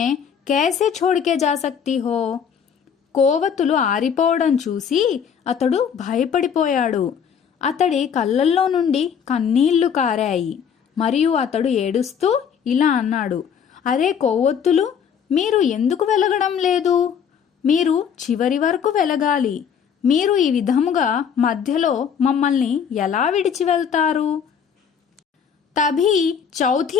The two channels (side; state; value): right; quieter; 7.5 dB